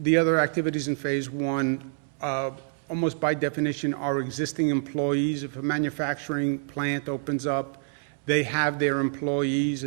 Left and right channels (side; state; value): left; silent; 60 dB below the other